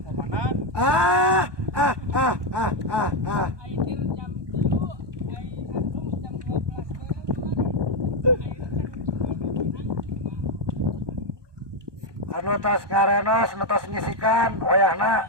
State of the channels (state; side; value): late; left; 1.2 ms